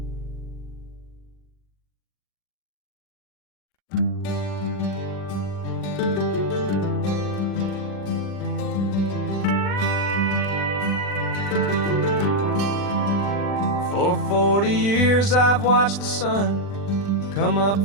For 40 years I've watched the sun come up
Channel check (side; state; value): right; late; 40 ms